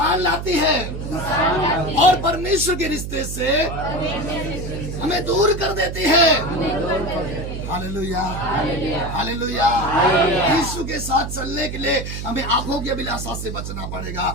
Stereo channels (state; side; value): noise; right; hum, 6 dB below the sound